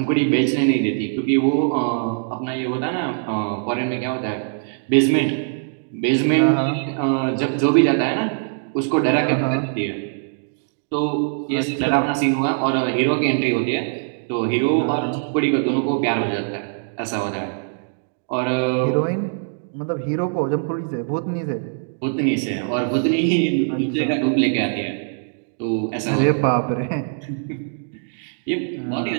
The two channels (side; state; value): left; silent; digital silence